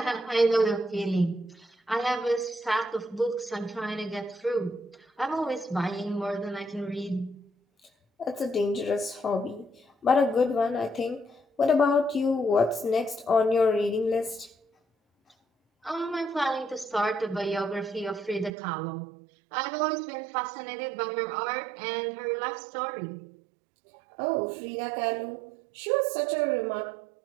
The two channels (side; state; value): left; drops out; at 18.5 s